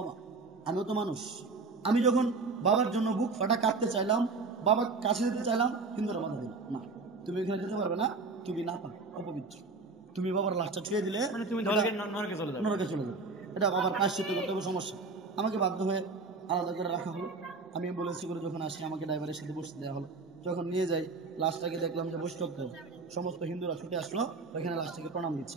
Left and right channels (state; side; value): quieter; left; 4.0 dB